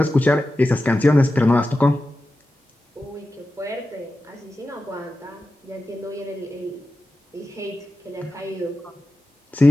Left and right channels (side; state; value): both; normal; correlation 0.93